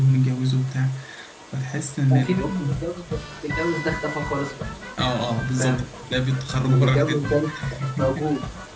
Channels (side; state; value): both; identical; correlation 1.00